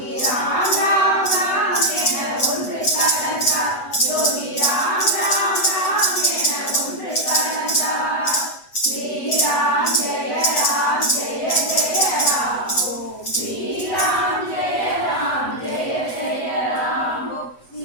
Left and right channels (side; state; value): right; late; 8.1 ms